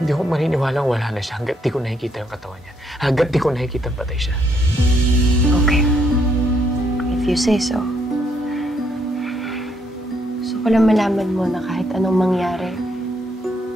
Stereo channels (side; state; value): both; normal; correlation 0.73